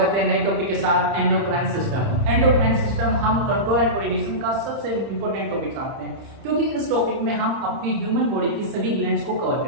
है नए टॉपिक के साथ एंडोक्राइन सिस्टम। एंडोक्राइन सिस्टम हम कंट्रोल एंड कोऑर्डिनेशन का सबसे इंपॉर्टेंट टॉपिक मानते हैं, क्योंकि इस टॉपिक में हम अपनी ह्यूमन बॉडी की सभी ग्लैंड्स को कवर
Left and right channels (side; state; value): left; late; 30 ms